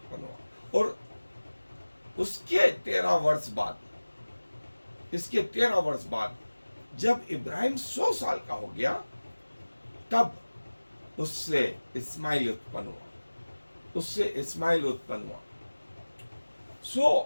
हुआ। और उसके 13 वर्ष बाद, इसके 13 वर्ष बाद जब इब्राहिम 100 साल का हो गया, तब उससे इस्माइल उत्पन्न हुआ, उससे इस्माइल उत्पन्न हुआ।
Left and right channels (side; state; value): both; inverted; correlation -1.00